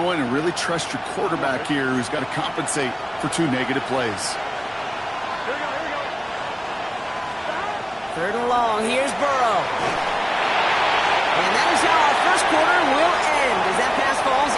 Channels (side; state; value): both; identical; correlation 1.00